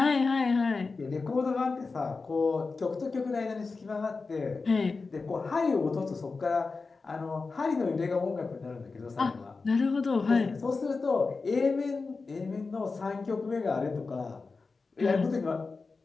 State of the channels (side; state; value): right; quieter; 4.2 dB